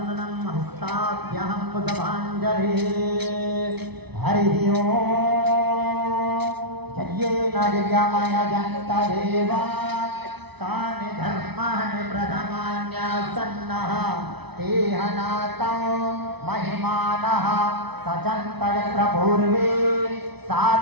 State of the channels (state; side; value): late; left; 0.99 ms